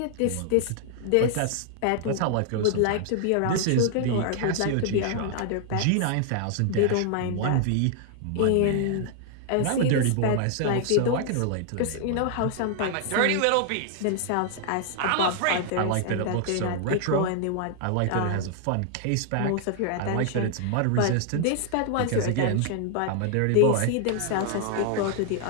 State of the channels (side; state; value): both; different; correlation 0.00